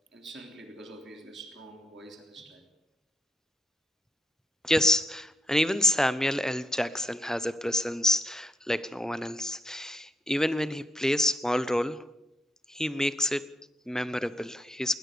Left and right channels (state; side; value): normal; both; correlation 0.75